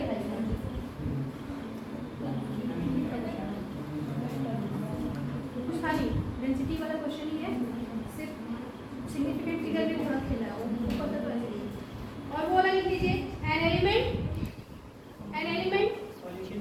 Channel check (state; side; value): identical; both; correlation 1.00